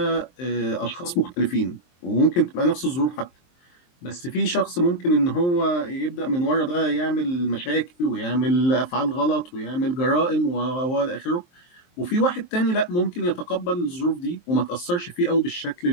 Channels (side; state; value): right; late; 23 ms